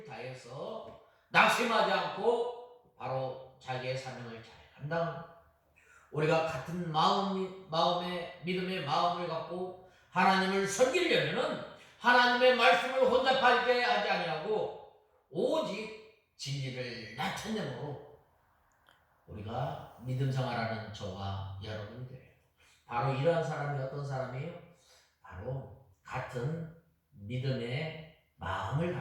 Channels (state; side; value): identical; both; correlation 1.00